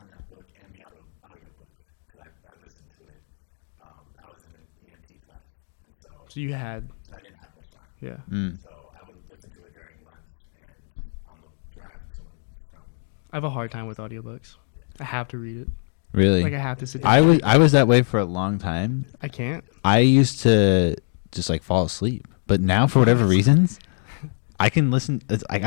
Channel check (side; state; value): right; silent; 62 dB below the other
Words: that book and the audiobook, because I listened to it, I was in an EMT class. And So you had, so I didn't have much time. yeah. Mm. So I would listen to it during lunch and on the drive to and from. I have a hard time with audiobooks. I have to read it. Really, Like I have to sit down. I was that way for a long time. I can't. I used to just like fall asleep, but now for whatever reasons, I can listen. It's, like,